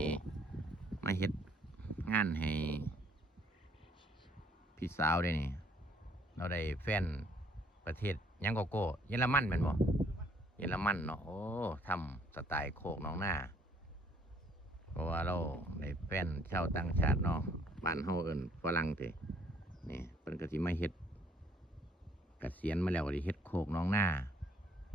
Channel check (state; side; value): normal; both; correlation 0.63